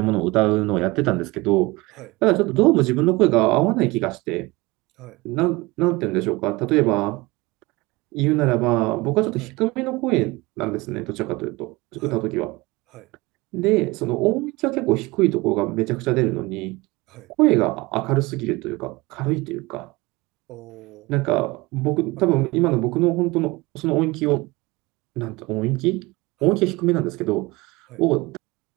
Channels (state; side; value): quieter; left; 22.6 dB